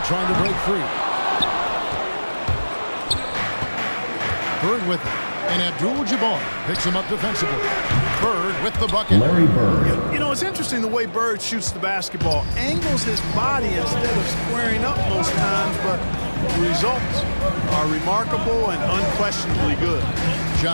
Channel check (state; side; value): inverted; both; correlation -1.00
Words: trying to break free. Bird with it. And Abdul-Jabbar picks him up defensively. Bird with the bucket. Larry Bird. You know, it's interesting the way Bird shoots the basketball. Angles his body instead of squaring up most times, but the results are remarkable and unquestionably good.